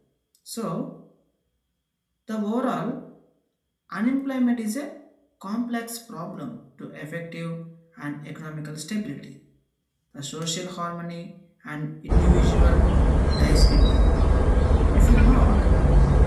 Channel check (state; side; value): identical; both; correlation 1.00